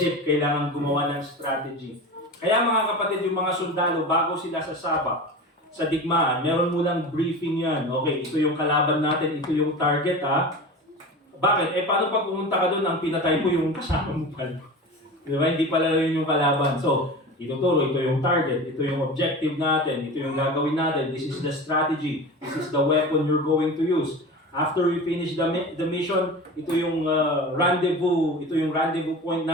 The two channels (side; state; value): both; normal; correlation 0.31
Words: kailangan gumawa ng strategy. Kaya mga kapatid, yung mga sundalo, bago sila sasabak sa digmaan, meron munang briefing yan. Okay, ito yung kalaban natin, ito yung target ha. Bakit? Paano pag pumunta ka doon, ang pinatay mo yung kasama mo pala? Di ba? Hindi pala yun yung kalaban. So, ituturo, ito yung target, ito yung objective natin, ito yung gagawin natin, this is the strategy, this is the weapon you're going to use. After we finish the mission, ito yung rendezvous point